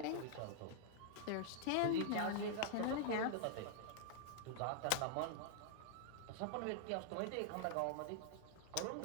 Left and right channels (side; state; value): both; different; correlation 0.00